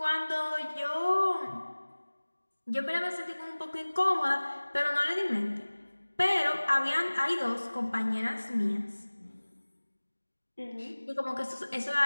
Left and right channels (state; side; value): inverted; both; correlation -1.00